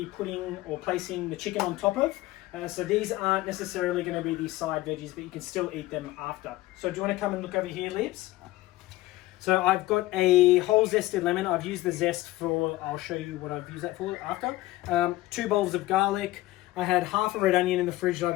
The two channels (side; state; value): right; quieter; 17.9 dB